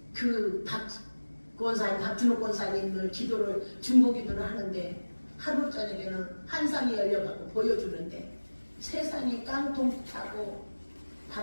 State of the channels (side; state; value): both; inverted; correlation -1.00